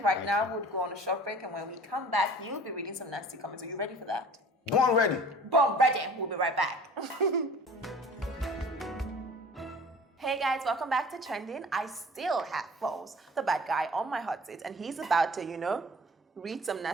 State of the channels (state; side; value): normal; both; correlation 0.45